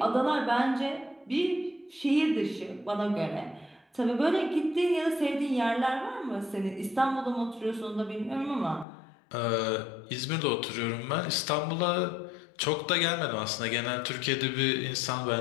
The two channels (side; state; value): right; drops out; at 8.8 s